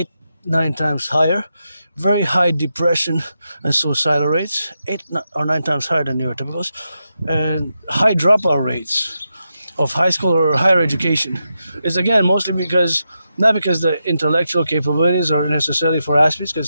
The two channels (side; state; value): both; inverted; correlation -0.87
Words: 8-9 times higher. Very high depression and suicidal rates, 8 or 9 times higher than neurotypicals, and high dropout rates of high school or higher education. Is again mostly not because the intellectual capabilities are necessarily for Aspies,